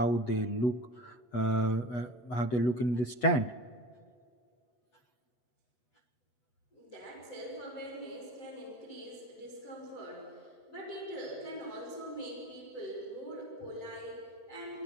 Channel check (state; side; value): late; right; 8.2 ms